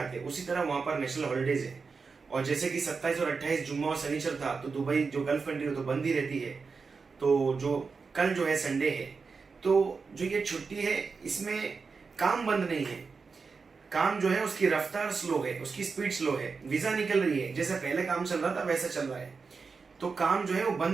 उसी तरह वहाँ पर नेशनल हॉलीडेज है। और जैसे कि 27 और 28 जुम्मा और शनिचर था तो दुबई जो गल्फ कंट्री हो तो बंद ही रहती है। तो जो कल जो है संडे है, तो जो ये छुट्टी है इसमें काम बंद नहीं है। काम जो है उसकी रफ्तार स्लो है, उसकी स्पीड स्लो है, वीजा निकल रही है, जैसे पहले काम चल रहा था वैसा चल रहा है। तो काम जो है वो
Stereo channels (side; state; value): left; quieter; 4.9 dB